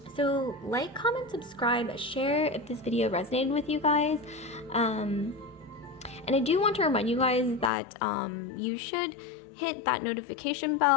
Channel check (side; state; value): right; drops out; at 7.7 s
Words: So like, comment, subscribe, share if this video resonated with you guys. And I do want to remind you guys that you should hit that notification